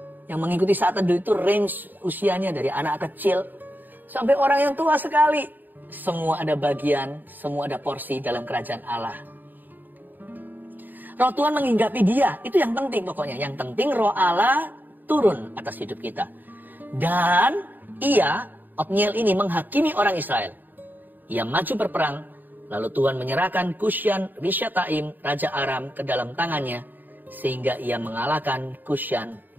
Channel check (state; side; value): late; left; 0.089 ms